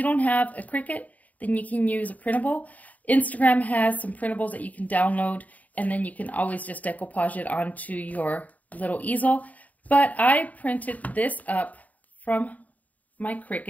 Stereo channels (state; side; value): late; right; 0.073 ms